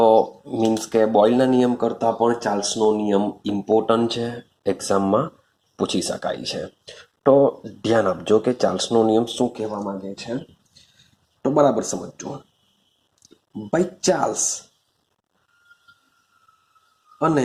મીન્સ કે બોયલના નિયમ કરતાં પણ ચાર્લ્સનો નિયમ ઇમ્પોર્ટન્ટ છે, એક્ઝામમાં પૂછી શકાય છે. તો ધ્યાન આપજો કે ચાર્લ્સનો નિયમ શું કહેવા માંગે છે. તો બરાબર સમજજો. ભાઈ ચાર્લ્સ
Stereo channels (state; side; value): identical; both; correlation 1.00